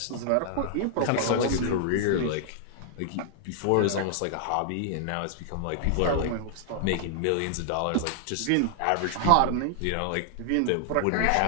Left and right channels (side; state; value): both; different; correlation 0.00